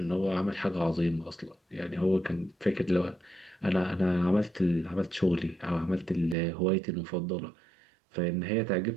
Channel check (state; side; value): drops out; left; at 6.4 s